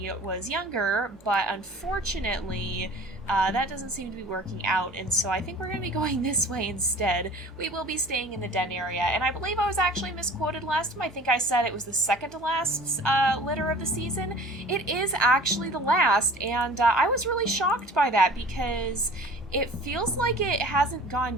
was younger, but unfortunately that doesn't seem to be working out, and so I think we're going to be going this way instead. We will be staying in the den area, and I believe I was actually misquoted last time. I think I said it was the second to last litter of the season. It is actually the last, and I was really shocked by that because it feels like it hasn't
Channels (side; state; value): both; normal; correlation 0.45